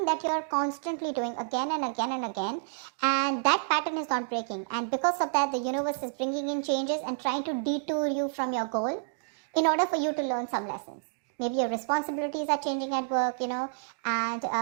that you're constantly doing again and again and again, and that pattern is not breaking. And because of that, the universe is bringing in changes and trying to detour you from your goal in order for you to learn some lessons. Maybe your responsibilities are changing at work,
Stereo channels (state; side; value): silent; left; digital silence